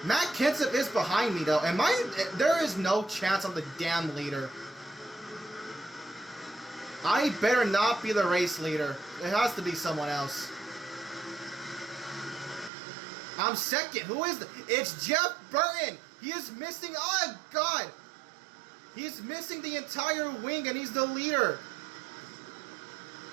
Matt Kenseth is behind me, though. There is no chance I'm the damn leader. I better not be the race leader. It has to be someone else. I'm second. Who is it? It's Jeff Burton. He is missing. Oh, God. He's missing the entire wing, and he's the leader.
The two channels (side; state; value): left; drops out; at 12.7 s